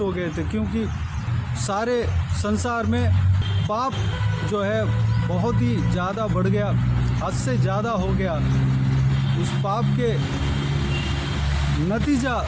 हो गए थे, क्योंकि सारे संसार में पाप जो है बहुत ही ज़्यादा बढ़ गया, हद से ज़्यादा हो गया। उस पाप के नतीजा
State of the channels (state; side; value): identical; both; correlation 1.00